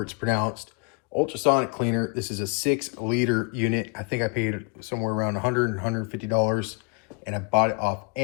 it's pronounced, ultrasonic cleaner. This is a 6-liter unit. I think I paid somewhere around $100, $150, and I bought it off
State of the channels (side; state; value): right; quieter; 32.7 dB